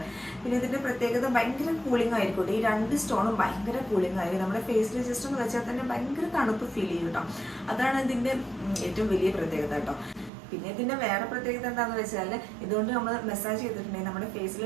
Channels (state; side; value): drops out; left; at 10.3 s